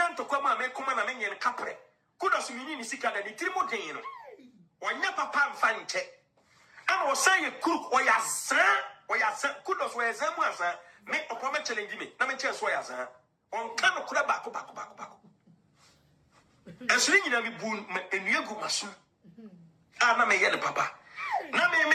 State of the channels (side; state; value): both; identical; correlation 1.00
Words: to come and make come and make capre. Kudos meaning sicker than the Trimodino. When your papa find it. I was saying cook or ya son, kudos where Zamuasa make a promise challenge me. Let me tell you why, sir. On kind of back. And swinging at me boon and you go masu. I'm a yellow papa. Now